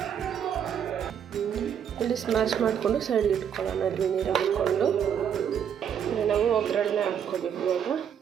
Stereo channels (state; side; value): quieter; left; 8.4 dB